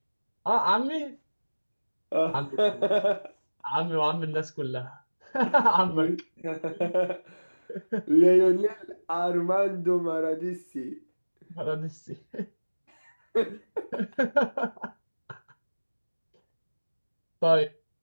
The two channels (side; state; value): both; inverted; correlation -1.00